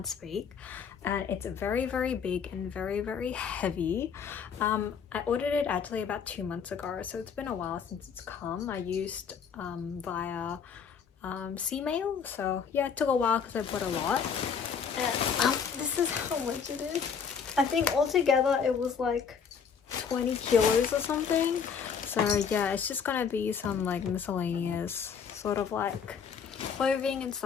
speak. And it's very big and very heavy. I ordered it actually about 2 months ago, so it's been a while since it's come. I used via C-mail, so yeah, it took a while because I bought a lot. And this is how much it is. I think altogether it was like 20 kilos or something. So yeah, it's just gonna be some like miscellaneous sort of like clothing and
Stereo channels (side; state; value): right; quieter; 6.6 dB